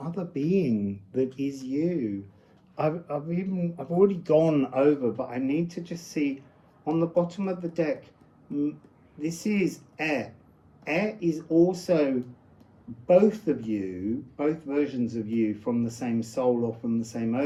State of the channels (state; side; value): identical; both; correlation 1.00